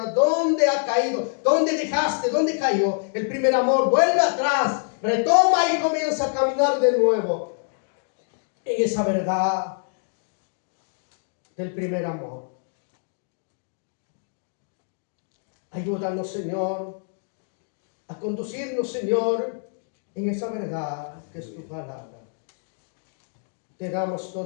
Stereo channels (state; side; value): silent; right; digital silence